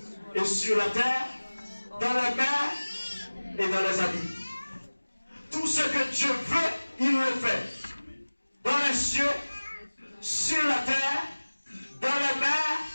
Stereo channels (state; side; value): inverted; both; correlation -1.00